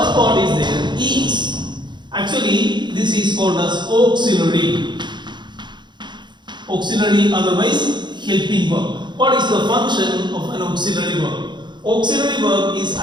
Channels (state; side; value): late; left; 0.22 ms